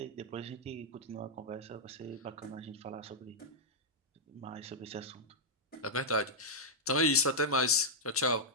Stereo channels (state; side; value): normal; both; correlation -0.07